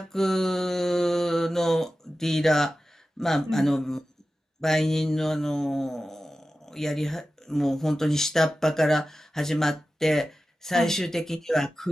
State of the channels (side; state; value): both; normal; correlation 0.94